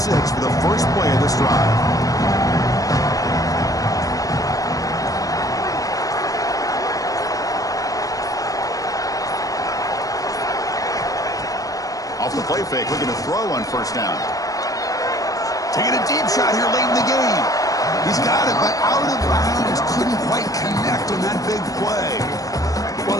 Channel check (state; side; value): late; right; 0.17 ms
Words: for the first play of this drive. Off the play fake, looking to throw on first down. Taking a deep shot here late in the game. He's got it, but out of bounds. Couldn't quite connect on that big play. Well,